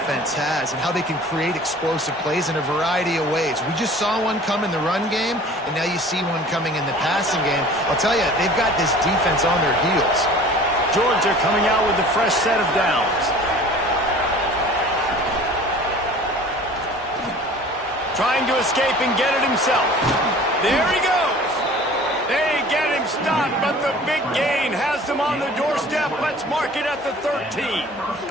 has and how they can create explosive plays in a variety of ways. We just saw one come in the run game, and now you see one coming in the passing game. I'll tell you, they've got this defense on their heels. Georgia coming out with a fresh set of downs. Trying to escape and get it himself. There he goes. They get him stopped, but the big gain has them on the doorstep. Let's mark it at the 13.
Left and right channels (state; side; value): normal; both; correlation 0.46